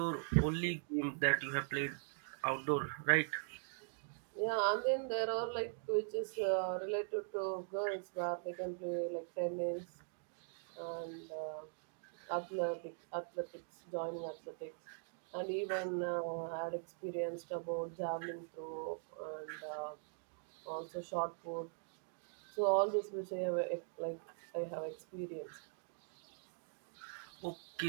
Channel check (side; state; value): left; silent; digital silence